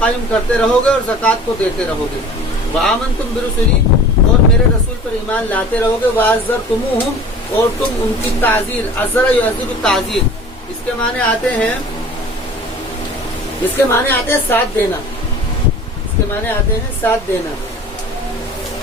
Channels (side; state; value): both; normal; correlation 0.43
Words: کرتے رہو گے اور زکوٰۃ کو دیتے رہو گے، وآمنتم برسلی، اور میرے رسول پر ایمان لاتے رہو گے، وعزرتموہم، اور تم ان کی تعزیر، عزر یعزر تعزیر، اس کے معنی آتے ہیں ساتھ دینا، اس کے معنی آتے ہیں ساتھ دینا۔